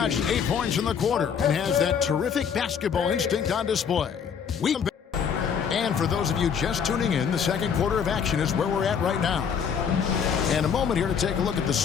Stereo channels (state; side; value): quieter; right; 7.1 dB